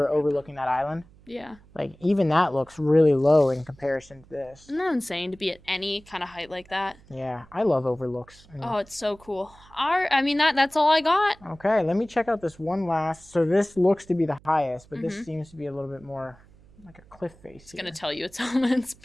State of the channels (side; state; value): right; noise; hum, 26 dB below the sound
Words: overlooking that island. Yeah. Like even that looks really low in comparison to this. Isn't that insane to be at any kind of height like that? Yeah, I love overlooks. Oh, it's so cool. That's all I got. Okay, let me check out this one last. So this looks to be the highest, but this seems to be a little bit more like a cliff face. It's gonna tell you it's Hillman's